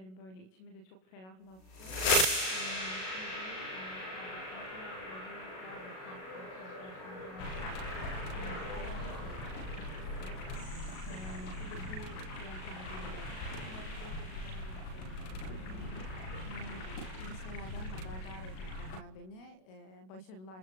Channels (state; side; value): late; right; 37 ms